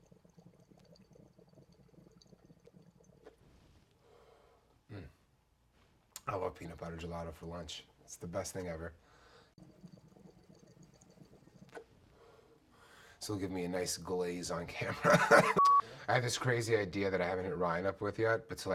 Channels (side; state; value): both; identical; correlation 1.00